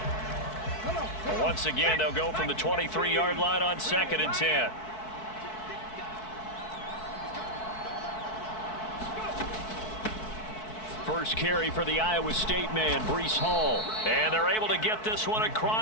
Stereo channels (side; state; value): right; late; 4.6 ms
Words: Once again, they'll go from the 23-yard line on 2nd and 10. First carry for the Iowa State man, Breece Hall. And they're able to get this one